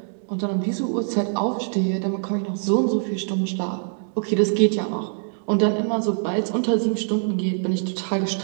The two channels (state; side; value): silent; left; digital silence